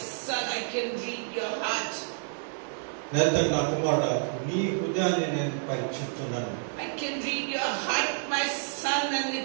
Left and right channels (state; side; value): silent; left; 59 dB below the other